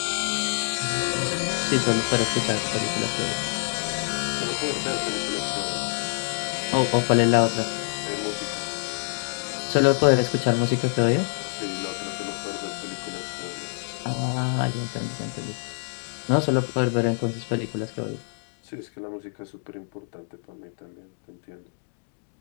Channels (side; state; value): right; silent; digital silence